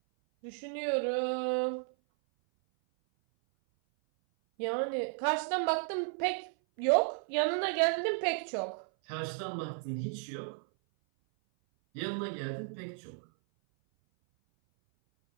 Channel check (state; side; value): silent; left; 55 dB below the other